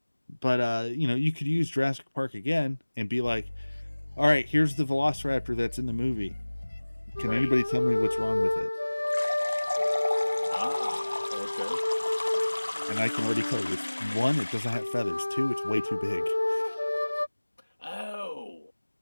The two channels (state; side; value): inverted; both; correlation -1.00